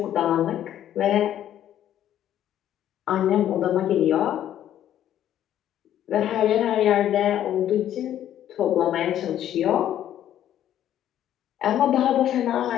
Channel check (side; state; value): right; quieter; 11.3 dB